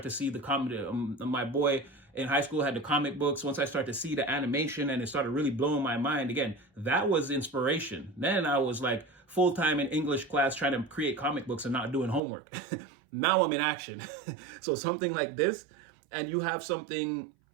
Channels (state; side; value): drops out; left; at 12.2 s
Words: to see the comic. My boy in high school had the comic books. Once I started to see the animation and it started really blowing my mind, again, that was inspiration. Then I was like full-time in English class trying to create comic books and not doing homework. Now I'm in action. So something like this, and you have something,